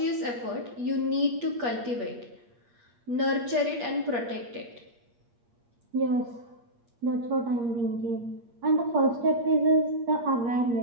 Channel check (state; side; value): late; left; 8.4 ms